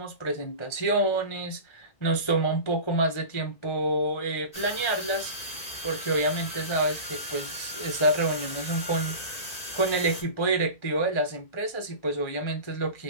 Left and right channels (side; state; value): right; late; 1.8 ms